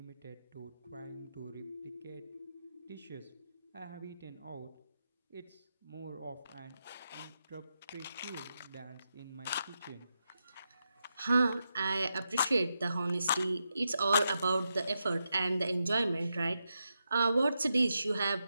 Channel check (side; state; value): both; inverted; correlation -0.86